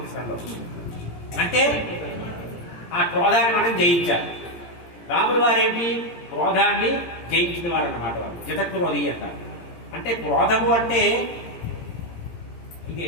అంటే ఆ క్రోధాన్ని మనం జయించాలి. రాముల వారేంటి? క్రోధాన్ని జయించిన వారు అన్నమాట. వారు జితక్రోధి అంటారు. అంటే క్రోధము అంటే ఇది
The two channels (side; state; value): right; late; 17 ms